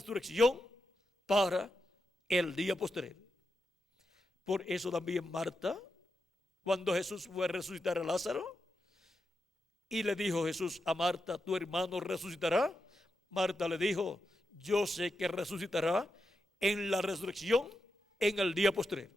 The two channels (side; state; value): both; normal; correlation 0.87